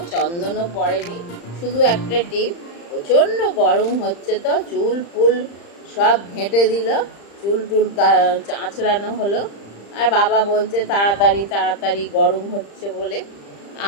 চন্দনও পরেনি, শুধু একটা টিপ। প্রচণ্ড গরম হচ্ছে তো, চুল ফুল সব ঘেঁটে দিল, চুল টুল আঁচড়ানো হলো। আর বাবা বলছে তাড়াতাড়ি তাড়াতাড়ি, গরম হচ্ছে বলে।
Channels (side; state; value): right; late; 35 ms